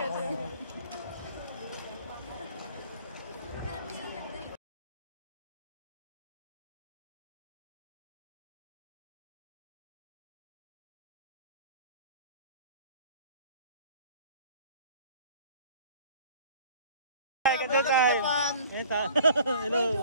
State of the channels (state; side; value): inverted; both; correlation -0.49